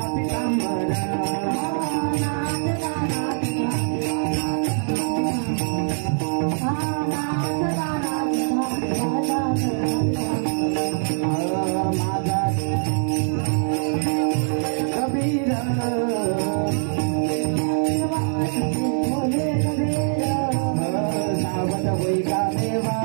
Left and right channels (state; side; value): silent; left; digital silence